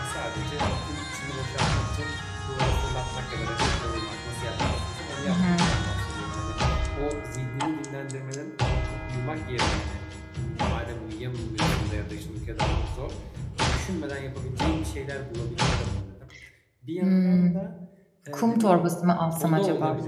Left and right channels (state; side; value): identical; both; correlation 1.00